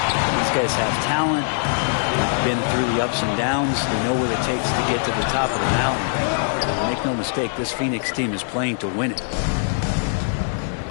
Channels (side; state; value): right; silent; digital silence